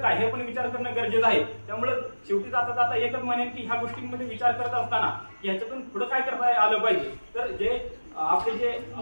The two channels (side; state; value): both; inverted; correlation -1.00